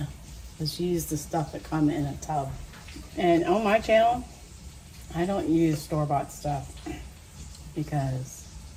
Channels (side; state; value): both; identical; correlation 1.00